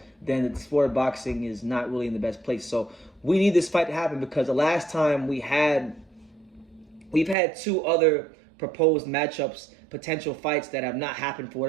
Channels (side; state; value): left; drops out; at 7.4 s